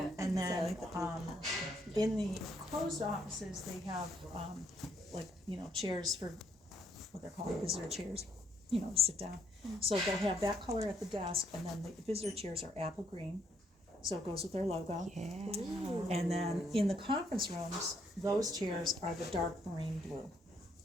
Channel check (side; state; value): both; normal; correlation 0.71